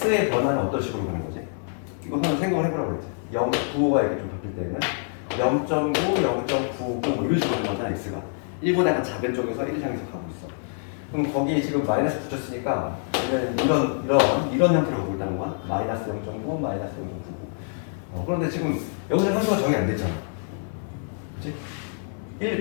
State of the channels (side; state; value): right; silent; 61 dB below the other